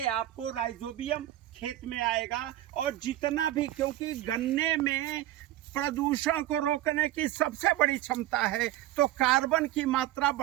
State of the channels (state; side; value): quieter; left; 14.3 dB